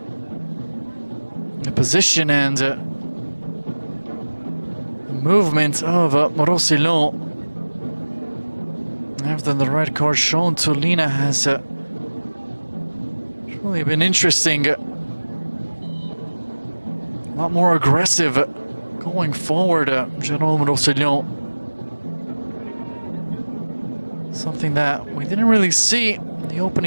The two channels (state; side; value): inverted; both; correlation -1.00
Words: Position and movement of Roussillon. After the red card shown to Lina has really been interesting. A lot more aggressive going forward. General Roussillon. Something that we didn't really see in the